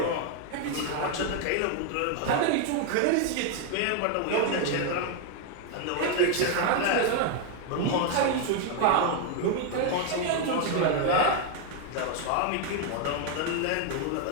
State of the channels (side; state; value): both; different; correlation 0.01